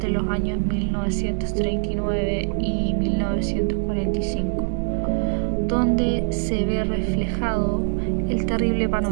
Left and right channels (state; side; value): silent; left; digital silence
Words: los años 1939 y 1945, donde se ve reflejado el terrible